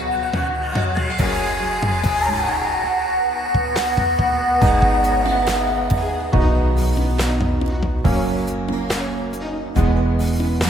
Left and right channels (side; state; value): both; normal; correlation 0.74